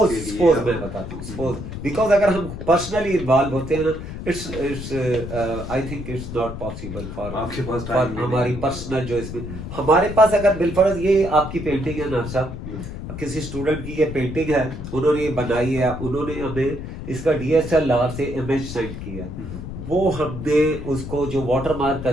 इसके लिए। मैं बताता हूँ, सपोज बिकॉज अगर हम पर्सनली इन्वॉल्व होते हैं ना, it's I think it's not possible for हमारी पर्सनल जो इसमें हमारे पास अगर बिलफर्ज ये आपकी पेंटिंग है ना साहब, किसी स्टूडेंट की ये पेंटिंग है, उन्होंने ये बनाई है, उन्होंने हमें इसका DSLR से इमेज सेंड किया, वो हमने उसको जो वाटर मार्क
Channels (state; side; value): noise; left; rumble, 8 dB below the sound